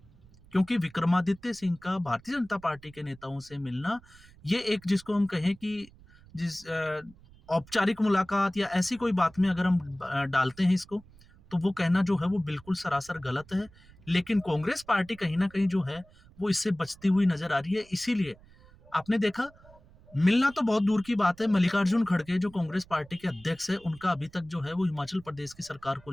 क्योंकि विक्रमादित्य सिंह का भारतीय जनता पार्टी के नेताओं से मिलना, ये एक जिसको हम कहें कि जिस औपचारिक मुलाकात या ऐसी कोई बात में अगर हम डालते हैं इसको, तो वो कहना जो है वो बिल्कुल सरासर गलत है। लेकिन कांग्रेस पार्टी कहीं ना कहीं जो है वो इससे बचती हुई नजर आ रही है। इसीलिए आपने देखा, मिलना तो बहुत दूर की बात है, मल्लिकार्जुन खड़गे जो कांग्रेस पार्टी के अध्यक्ष है, उनका अभी तक जो है वो हिमाचल प्रदेश की सरकार को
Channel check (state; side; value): noise; right; rumble, 25 dB below the sound